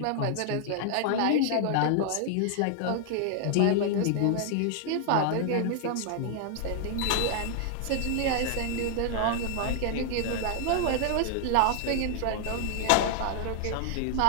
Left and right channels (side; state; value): both; different; correlation 0.00